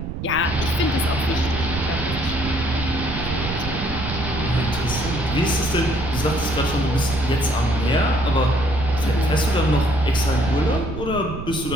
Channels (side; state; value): right; noise; rumble, 6 dB below the sound